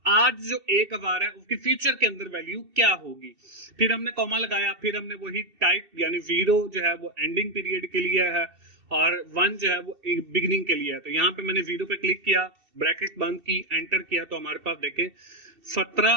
आज जो 1000 है उसकी फ्यूचर के अंदर वैल्यू क्या होगी। फिर हमने कॉमा लगाया, फिर हमने वही टाइप यानी 0 जो है वो एंडिंग पीरियड के लिए है और 1 जो है वो बिगिनिंग के लिए है। तो यहाँ पे मैंने 0 पे क्लिक किया, ब्रैकेट बंद की, एंटर किया, तो हमारे पास देखें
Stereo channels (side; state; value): left; late; 2.7 ms